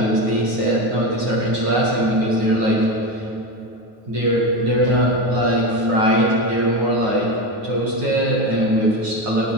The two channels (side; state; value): left; late; 9.3 ms